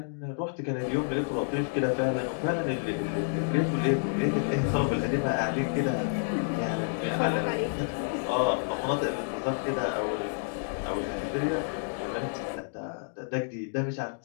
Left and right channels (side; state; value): right; silent; digital silence